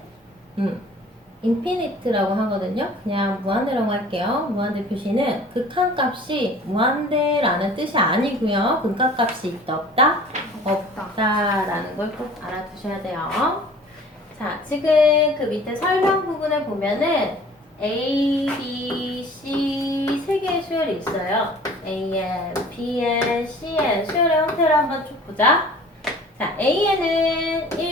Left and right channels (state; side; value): normal; both; correlation 0.47